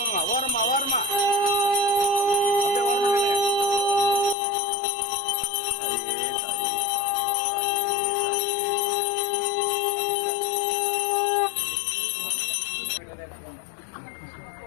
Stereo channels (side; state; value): right; drops out; at 4.4 s